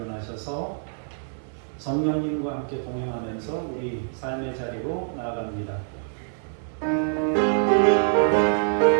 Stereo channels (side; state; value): left; silent; digital silence